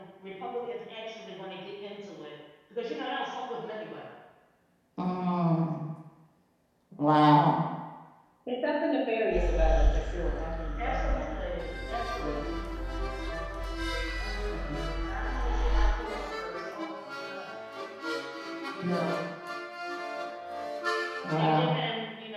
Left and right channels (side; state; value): both; identical; correlation 1.00